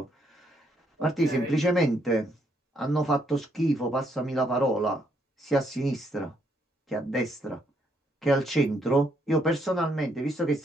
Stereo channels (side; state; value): both; normal; correlation 0.73